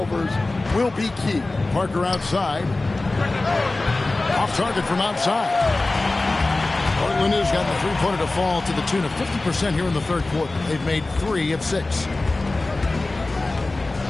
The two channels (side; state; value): right; quieter; 3.1 dB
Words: will be key. Parker outside. Off target from outside. Portland has got the three-pointer to fall to the tune of 50% here in the third quarter. They've made 3 of 6.